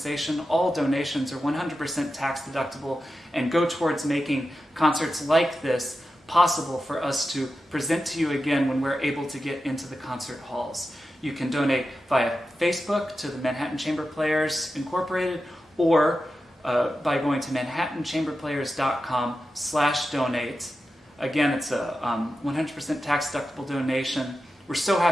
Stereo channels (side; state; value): both; normal; correlation 0.91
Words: All donations are 100% tax deductible and go towards making concerts like this possible for us to present to you again when we're able to get into the concert halls. You can donate via Facebook to the Manhattan Chamber Players Incorporated, or by going to manhattanchamberplayers.com/donate. Again, it's a 100% tax-deductible donation. We're so